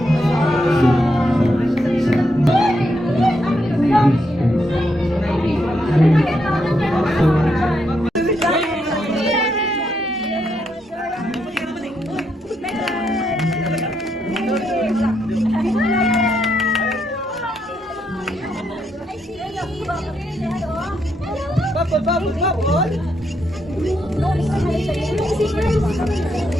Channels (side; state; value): both; normal; correlation 0.79